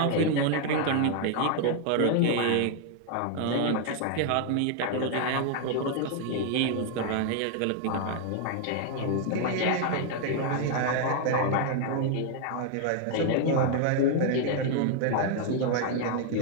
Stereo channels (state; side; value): different; both; correlation 0.00